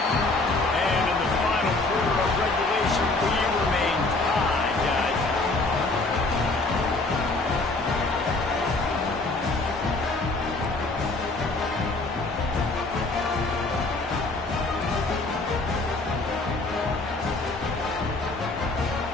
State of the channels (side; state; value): right; quieter; 3.2 dB